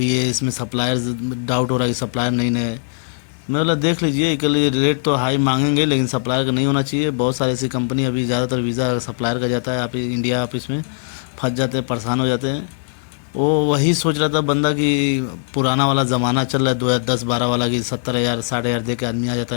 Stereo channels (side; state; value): right; silent; digital silence